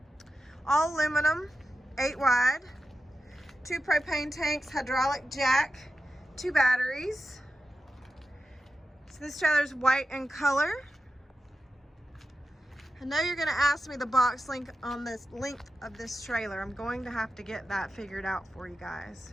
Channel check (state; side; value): normal; both; correlation 0.92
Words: all aluminum, 8 wide, 2 propane tanks, hydraulic jack, 2 batteries. So this trailer is white in color. I know you're going to ask me the box length on this length of this trailer. I'm going to have to get that figured out for you guys.